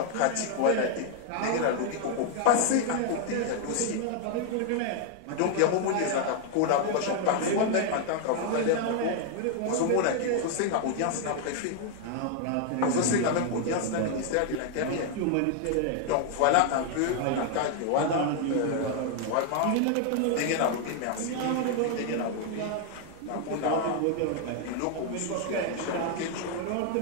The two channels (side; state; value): both; different; correlation 0.00